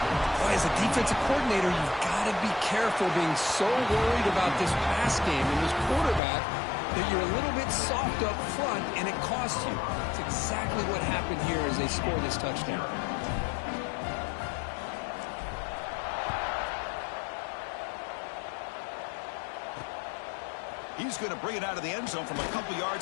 Boy, as a defensive coordinator, you've got to be careful being so worried about this pass game and this quarterback that you're a little bit soft up front and it costs you. It's exactly what happened here as they score this touchdown. He's going to bring it out of the end zone from a couple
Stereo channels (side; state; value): right; drops out; at 6.2 s